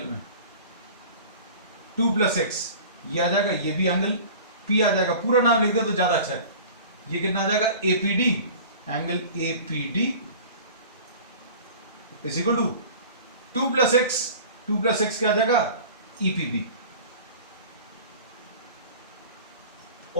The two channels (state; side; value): inverted; both; correlation -0.41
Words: में 2 प्लस x ये आ जाएगा, ये भी एंगल P आ जाएगा. पूरा नाम लिख दे तो ज्यादा अच्छा है. ये कितना आ जाएगा, APD, angle APD is equal to 2 plus x क्या आ जाएगा, EPB.